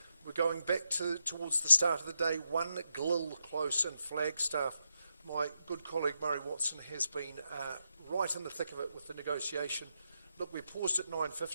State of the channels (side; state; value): both; inverted; correlation -0.84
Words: We're going back towards the start of the day. 1 Glil close in Flagstaff. My good colleague Murray Watson has been right in the thick of it with the negotiation. Look, we paused at